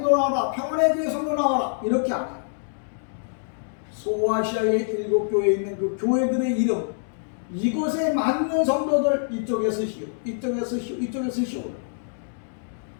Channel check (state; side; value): silent; right; digital silence